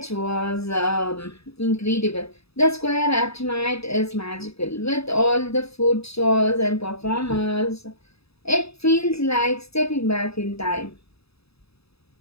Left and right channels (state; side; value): late; right; 0.78 ms